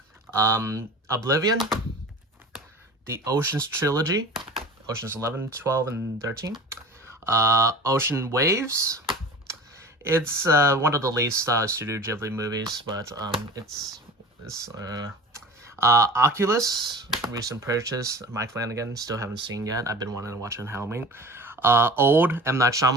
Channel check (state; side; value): normal; both; correlation 0.38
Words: Oblivion. The Oceans trilogy. Oceans 11, 12, and 13. Ocean Waves. It's one of the least Studio Ghibli movies, but it's Oculus. Recent purchase. Mike Flanagan. Still haven't seen yet. I've been wanting to watch it on Halloween. Old, M. Night